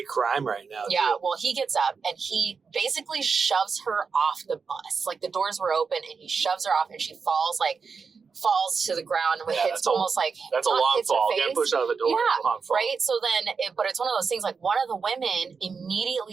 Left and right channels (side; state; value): left; quieter; 5.3 dB